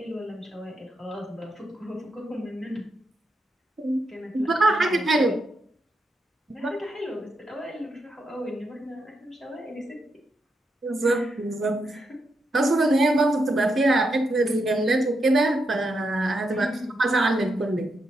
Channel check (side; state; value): both; normal; correlation 0.83